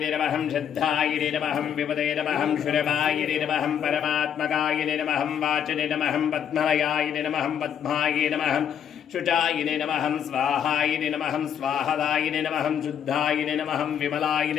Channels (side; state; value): right; quieter; 8.8 dB